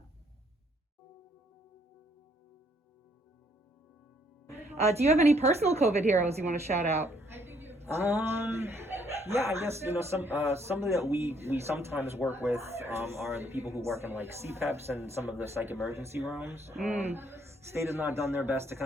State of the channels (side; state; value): both; normal; correlation 0.67